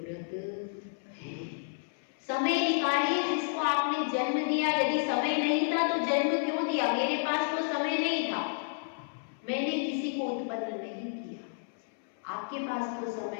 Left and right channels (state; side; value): silent; right; 57 dB below the other